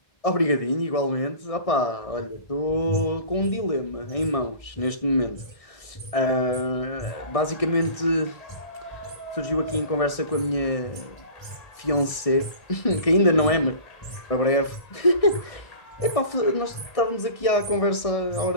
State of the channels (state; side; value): late; right; 1.6 ms